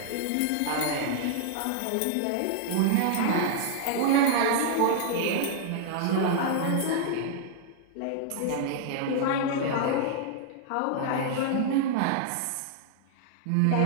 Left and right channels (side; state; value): both; different; correlation -0.01